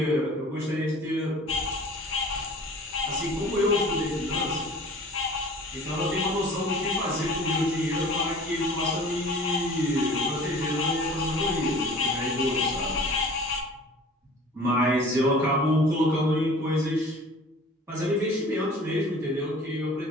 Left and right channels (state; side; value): normal; both; correlation 0.45